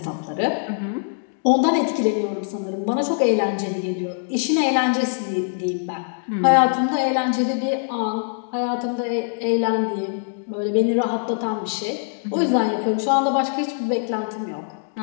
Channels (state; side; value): silent; right; digital silence